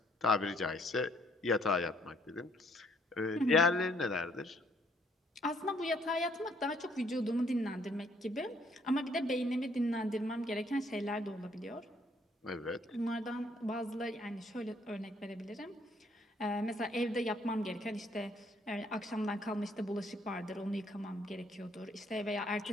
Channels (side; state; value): both; normal; correlation 0.66